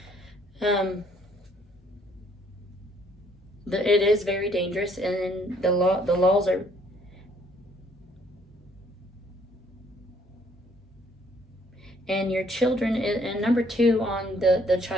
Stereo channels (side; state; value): both; normal; correlation 0.64